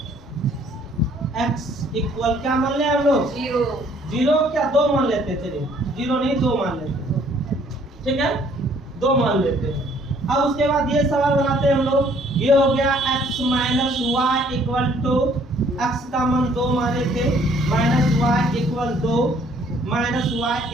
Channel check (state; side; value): normal; both; correlation 0.61